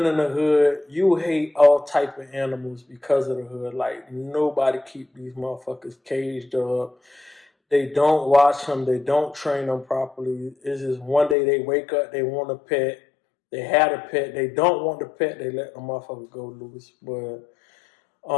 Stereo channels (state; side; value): drops out; right; at 11.4 s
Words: in the hood, you hate all type of animals because of the hood. Like, nobody keep these motherfuckers caged up. They don't watch them. They don't train them properly. It's just one day they wake up, they want a pet. They had a pet. They don't want the pet. They let the motherfucker go loose. But